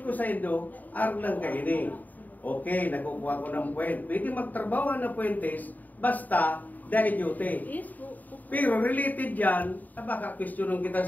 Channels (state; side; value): late; right; 0.082 ms